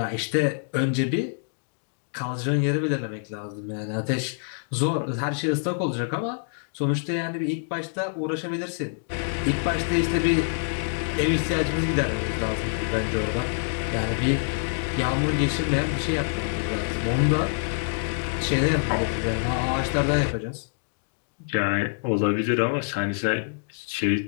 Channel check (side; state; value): right; silent; digital silence